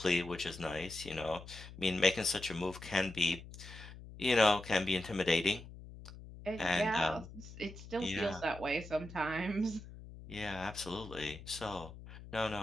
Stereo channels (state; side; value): noise; left; hum, 15 dB below the sound